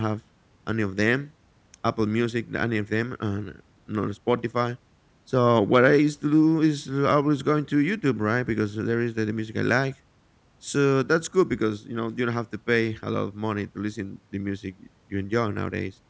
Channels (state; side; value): identical; both; correlation 1.00